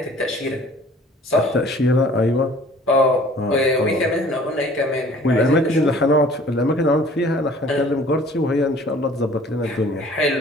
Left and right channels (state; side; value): normal; both; correlation 0.51